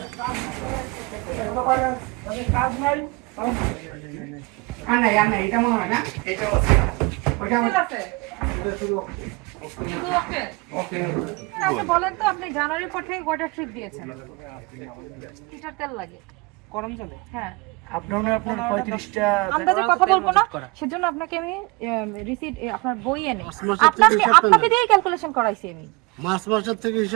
কাজ নাই না এটা মনে হয় না এটা ওটা আছে বলেন তো আপনি জানুয়ারি পর থেকে কয়টা ট্রিপ দিয়েছেন? লিটার তেল লাগে গরম জলে? হ্যাঁ আপনার 35টা আন্দাজে কথা বলবো না, সেজন্য আপনাকে আমি রিসিট আপনার বই এনে আপনাকে দিয়ে ক্যালকুলেশন করাইছি আমি। মার্চ মাসের থেকে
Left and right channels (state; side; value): quieter; left; 25.0 dB